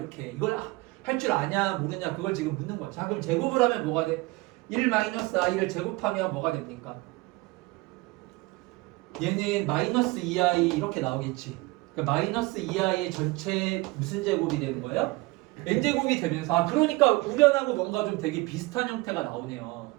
이걸 할 줄 아냐 모르냐 그걸 지금 묻는 거야. 자, 그럼 제곱을 하면 뭐가 돼? 1-i를 제곱하면 뭐가 됩니까? 얘는 마이너스 2i 이렇게 나오겠지. 그러니까 마이너스 2i의 전체 무슨 제곱이 되는 거예요? n제곱이 되면서 그러니까 우변하고 뭔가 좀 되게 비슷한 형태가 나오네요.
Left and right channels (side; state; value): left; quieter; 22.5 dB